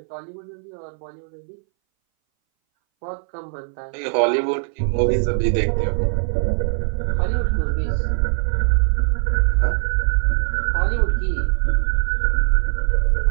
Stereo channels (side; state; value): left; silent; 61 dB below the other